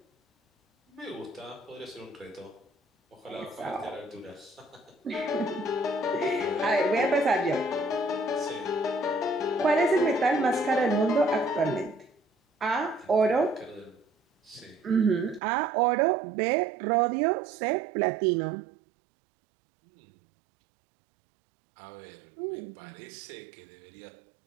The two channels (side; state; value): left; drops out; at 15.4 s